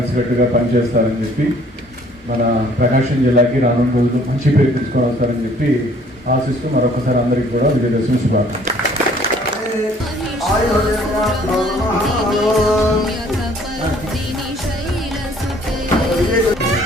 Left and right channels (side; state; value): both; normal; correlation 0.58